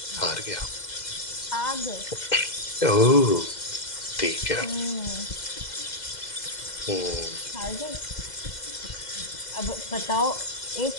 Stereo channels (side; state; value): right; late; 2.0 ms